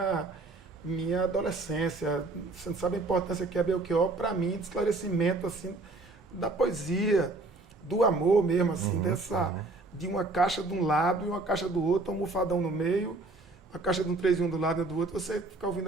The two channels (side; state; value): left; quieter; 3.2 dB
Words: adolescência. Você não sabe a importância que é Belchior para mim, de esclarecimento, assim, da poesia, do amor mesmo, assim, de uma caixa de um lado e uma caixa do outro, um almofadão no meio, uma caixa de um 3 em 1 do lado e do outro, você fica ouvindo